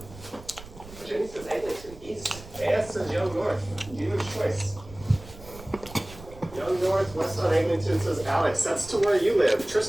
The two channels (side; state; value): right; noise; rumble, 17 dB below the sound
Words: Jenny says Eglinton East. AS says Young North. Dealer's choice. Young North, West on Eglinton, says Alex. That's to where you live.